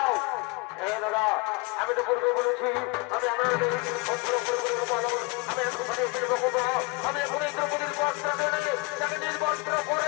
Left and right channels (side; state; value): right; quieter; 27.5 dB